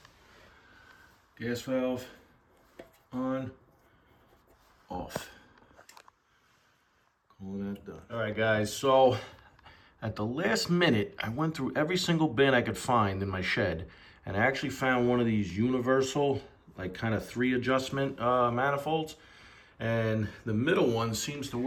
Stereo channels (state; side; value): identical; both; correlation 1.00